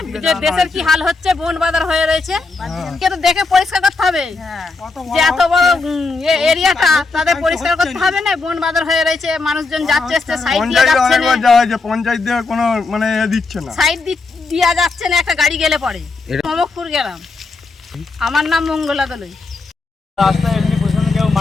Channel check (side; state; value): right; quieter; 3.9 dB